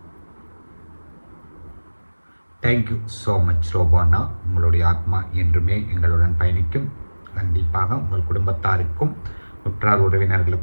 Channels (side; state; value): both; inverted; correlation -1.00